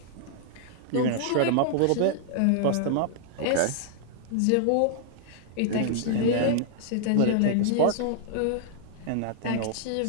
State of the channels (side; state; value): both; different; correlation -0.01